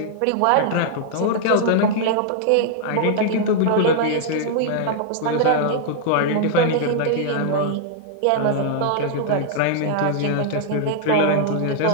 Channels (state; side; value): different; both; correlation -0.01